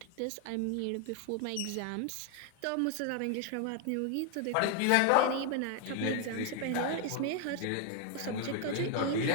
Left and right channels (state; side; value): different; both; correlation 0.01